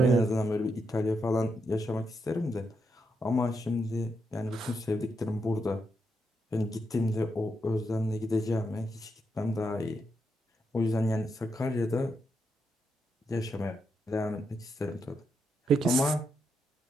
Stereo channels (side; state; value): both; normal; correlation 0.82